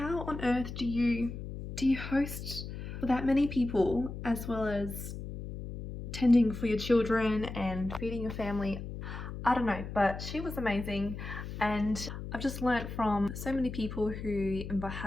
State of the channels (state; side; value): noise; left; hum, 8 dB below the sound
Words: on earth do you host for that many people, as well as tending for your children and feeding your family? I don't know, but she was amazing, and I've just learnt from so many people who